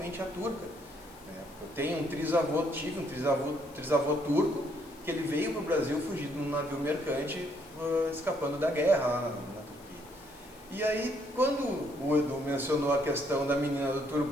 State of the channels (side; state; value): left; noise; hiss, 24 dB below the sound